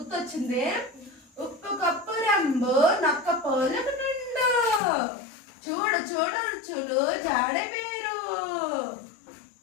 ఉప్పు కప్పు రంబు నక్క పోలకు నిండు, చూడు చూడు రుచులు జాడ వేరు,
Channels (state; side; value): drops out; right; at 4.8 s